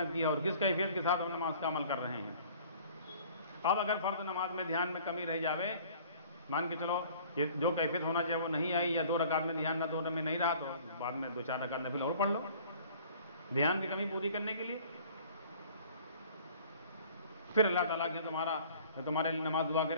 کی ہے، اور کس کیفیت کے ساتھ ہم نماز کا عمل کر رہے ہیں. اب اگر فرض نماز میں دھیان میں کمی رہ جاوے مان کے چلو یہ جو کیفیت ہونا چاہیے وہ نہیں آئی، یا 2 رکعت میں دھیان نہ 2 میں نہیں رہا، تو بعد میں 2-4 رکعت نفل اور پڑھ لو دھیان کی کمی پوری کرنے کے لیے. پھر اللہ تعالیٰ کے تمہارے لیے نماز دعا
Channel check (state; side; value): inverted; both; correlation -0.50